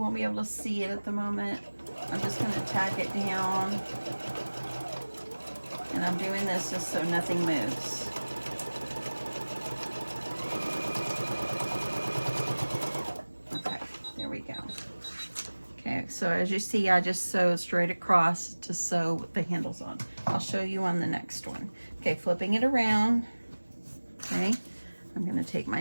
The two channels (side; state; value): both; inverted; correlation -1.00